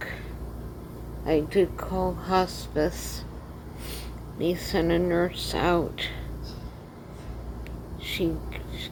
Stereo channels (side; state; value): both; identical; correlation 1.00